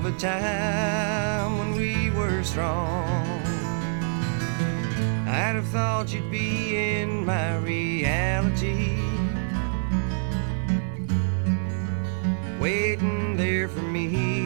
a time when we were strong. I'd have thought you'd be in my reality, waiting there for me.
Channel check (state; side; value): silent; left; digital silence